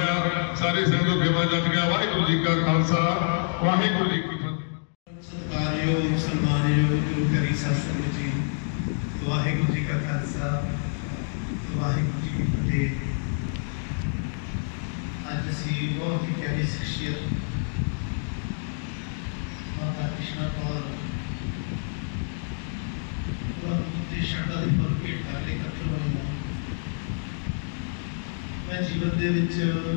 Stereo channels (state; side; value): silent; right; digital silence